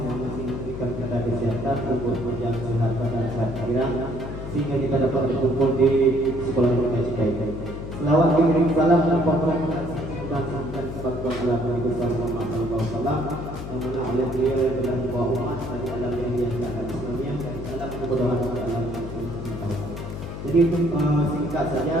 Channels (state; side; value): noise; left; hum, 8 dB below the sound